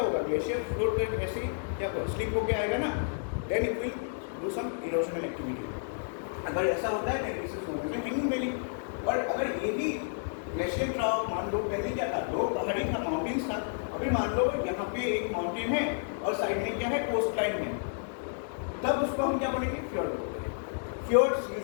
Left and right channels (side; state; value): right; silent; digital silence